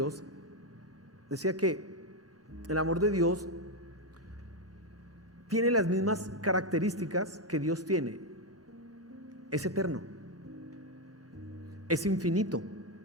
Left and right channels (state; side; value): normal; both; correlation 0.05